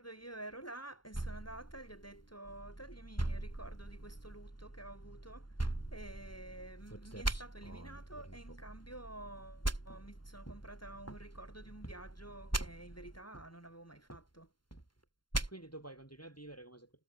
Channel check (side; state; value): right; late; 0.72 ms